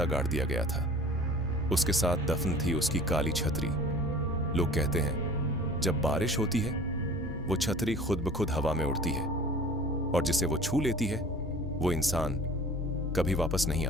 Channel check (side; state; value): both; normal; correlation 0.45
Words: गाड़ दिया गया था। उसके साथ दफन थी उसकी काली छतरी। लोग कहते हैं जब बारिश होती है वो छतरी खुद ब खुद हवा में उड़ती है और जिसे वो छू लेती है वो इंसान कभी वापस नहीं